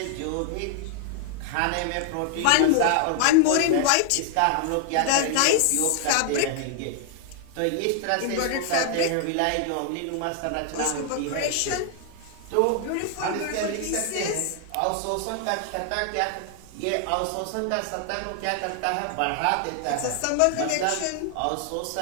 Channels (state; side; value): different; both; correlation 0.00